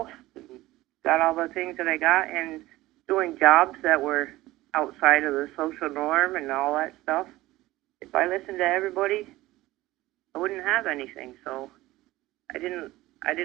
and got all the things that I got and doing jobs that were outside of the social norm and all that stuff. If I listened to everybody, I wouldn't have anything. So I didn't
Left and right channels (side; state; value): left; quieter; 17.7 dB